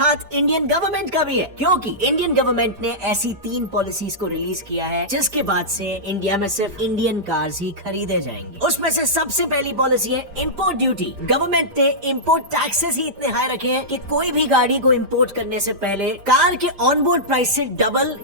इंडियन गवर्नमेंट का भी है, क्योंकि इंडियन गवर्नमेंट ने ऐसी 3 पॉलिसीज को रिलीज किया है जिसके बाद से इंडिया में सिर्फ इंडियन कार्स ही खरीदे जाएंगे। उसमें से सबसे पहली पॉलिसी है इंपोर्ट ड्यूटी। गवर्नमेंट ने इंपोर्ट टैक्सेस ही इतने हाई रखे हैं कि कोई भी गाड़ी को इंपोर्ट करने से पहले कार के ऑनबोर्ड प्राइस से डबल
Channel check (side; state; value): left; late; 5.0 ms